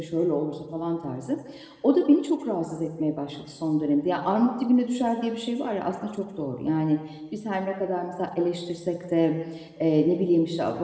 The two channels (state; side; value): identical; both; correlation 1.00